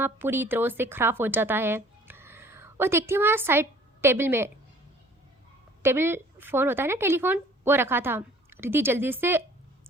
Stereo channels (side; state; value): both; normal; correlation 0.52